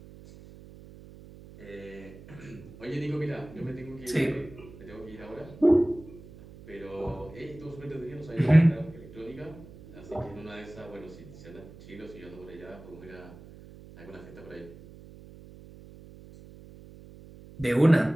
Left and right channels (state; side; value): noise; right; hum, 18 dB below the sound